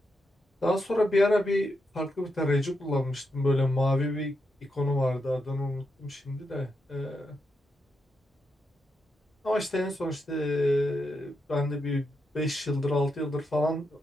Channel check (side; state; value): both; normal; correlation 0.84